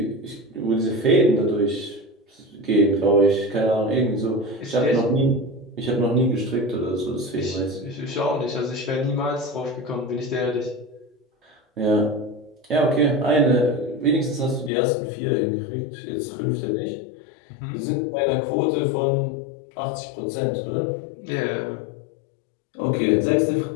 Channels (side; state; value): right; drops out; at 14.7 s